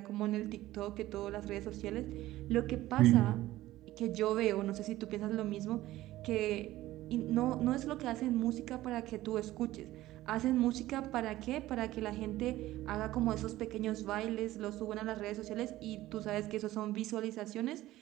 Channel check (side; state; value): left; quieter; 15.9 dB